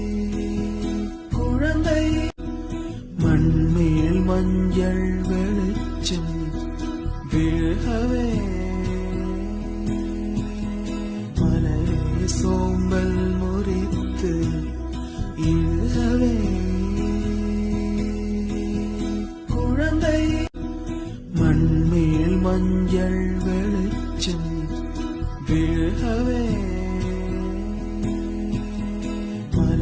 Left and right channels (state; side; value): identical; both; correlation 1.00